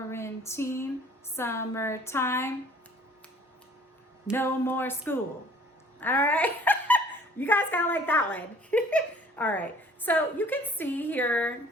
summertime. No more school. All right. You guys kind of like that one. All right. So you can see here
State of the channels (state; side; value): normal; both; correlation 0.53